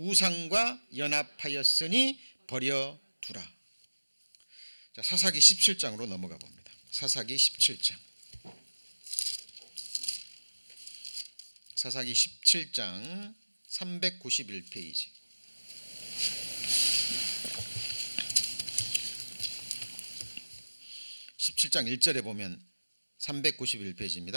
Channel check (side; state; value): both; inverted; correlation -1.00